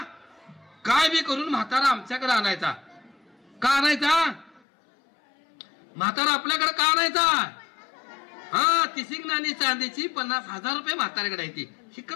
काय बी करून म्हातारा आमच्याकडे आणायचा. का आणायचा म्हातारा आपल्याकडे, का आणायचा. हा 30 नाणी चांदीची 50,000 रुपये म्हाताऱ्याकडे आहे ती,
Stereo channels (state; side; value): drops out; right; at 4.6 s